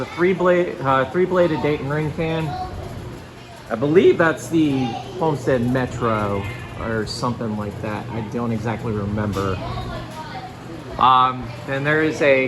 three-bladed Dayton ring fan. I believe that's the Homestead Metro or something like that. I don't exactly remember. Then there is a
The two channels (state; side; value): identical; both; correlation 1.00